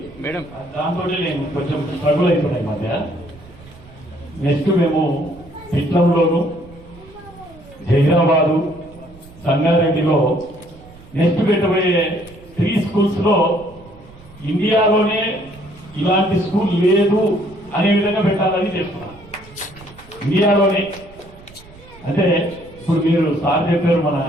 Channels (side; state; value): right; noise; rumble, 22 dB below the sound